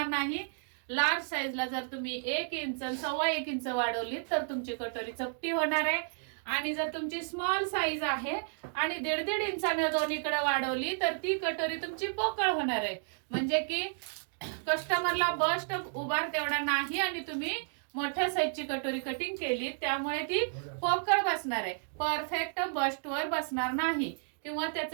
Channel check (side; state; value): left; silent; digital silence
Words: नाही. लार्ज साईजला जर तुम्ही 1 इंच 1.25 इंच वाढवली तर तुमची कटोरी चपटी होणार आहे. आणि जर तुमची स्मॉल साईज आहे आणि 1.5 इंचाने दोन्हीकडे वाढवली तर ती कटोरी तुमची पोकळ होणार आहे. म्हणजे की कस्टमरला बस्ट उभार तेवढा नाही आणि तुम्ही मोठ्या साईजची कटोरी कटिंग केली त्यामुळे ती पोकळ बसणार आहे, परफेक्ट बस्ट वर बसणार नाही किंवा